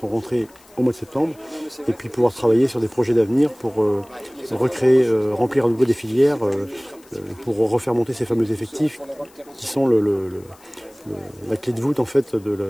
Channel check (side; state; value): left; noise; hiss, 28 dB below the sound